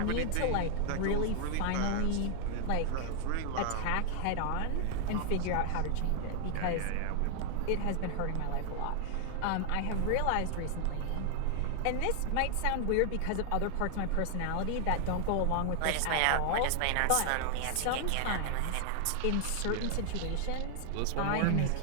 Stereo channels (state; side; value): different; both; correlation 0.00